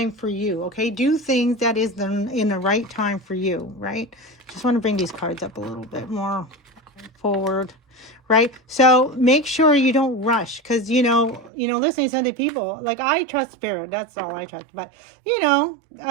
for you. Okay, do things that is in the right time for you. Right. Just want to bring these cards up a little bit more forward. Right. So make sure you don't rush, because, listening to other people, like I trust spirit. That's all I trust. But, you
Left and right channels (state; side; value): drops out; left; at 11.5 s